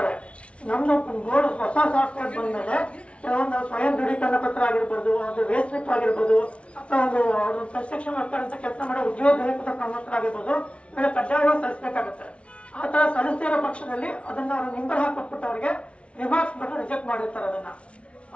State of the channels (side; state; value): right; late; 0.061 ms